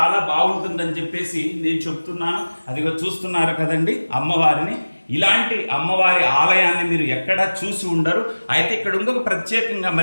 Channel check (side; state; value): both; inverted; correlation -1.00